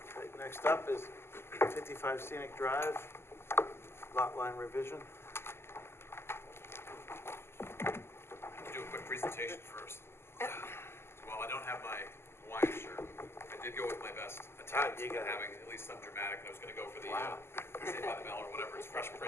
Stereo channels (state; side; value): late; right; 0.12 ms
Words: Right, next up is 55 Scenic Drive, lot line revision. Do a quick presentation first. Well, I don't have my Hawaiian shirt. I did go with my best attempt you at got it. having at least some dramatic. I was gonna go for the, Saved by the Bell or whatever, it's Fresh